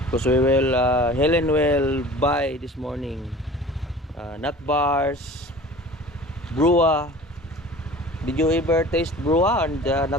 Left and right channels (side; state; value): both; normal; correlation 0.42